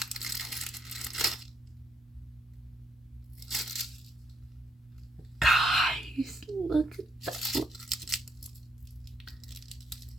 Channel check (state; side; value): normal; both; correlation 0.75